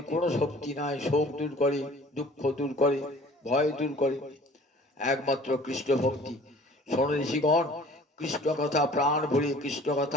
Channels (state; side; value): normal; both; correlation 0.49